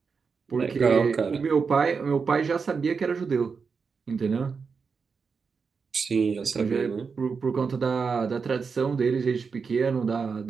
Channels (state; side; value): quieter; left; 5.4 dB